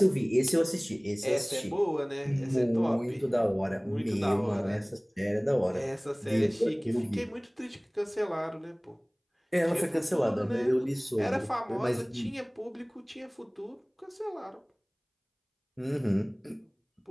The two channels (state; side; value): identical; both; correlation 1.00